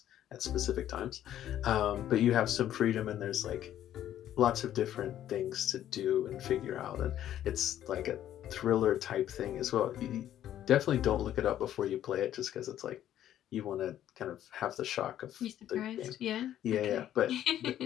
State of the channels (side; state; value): right; quieter; 11.6 dB